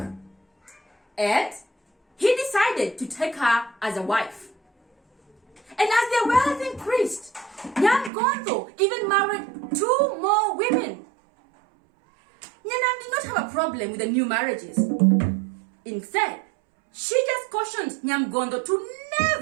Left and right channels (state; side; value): drops out; left; at 8.1 s